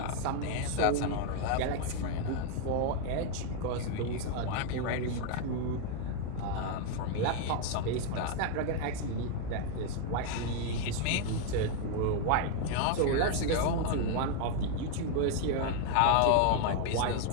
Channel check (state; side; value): different; both; correlation 0.00